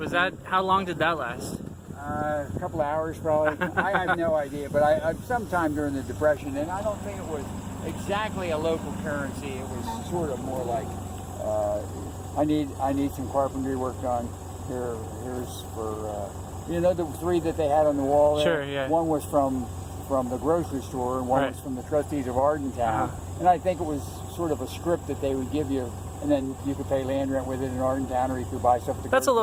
that, how long did that last? A couple of hours probably. I have no idea, but I sometime during the Depression, and I don't think it was exactly a local currency. It was sort of more like, I need some carpentry work done. Here's for, you know, the three that they had on the wall there? Sure, yeah. One was from the grocery store, and one Right. was from the trustees of Arden Town. And I think it was sort of a script that they would give you, and then you could pay land rent with it in Arden Town, or you could buy stuff at the That's a grocery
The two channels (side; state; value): both; identical; correlation 1.00